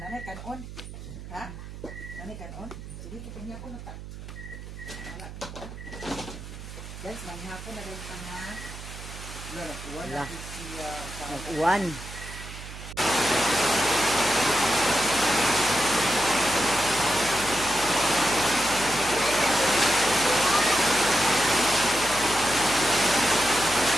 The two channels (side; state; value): right; noise; hum, 12 dB below the sound